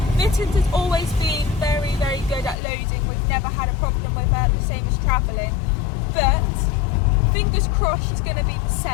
Mittens has always been very, very good at loading. We've never had a problem with her, the same as travelling. But fingers crossed she's going to be the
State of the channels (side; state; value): right; drops out; at 2.6 s